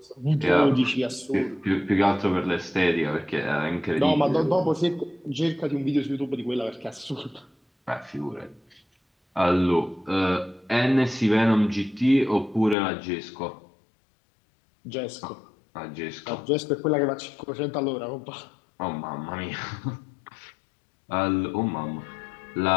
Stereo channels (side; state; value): right; drops out; at 12.8 s